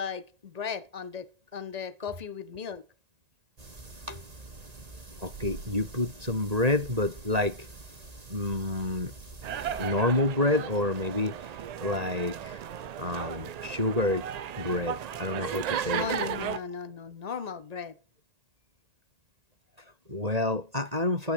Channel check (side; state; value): left; late; 1.9 ms